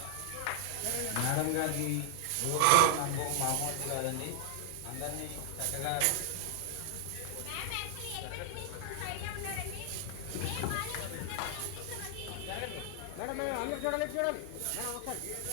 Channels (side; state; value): both; different; correlation 0.00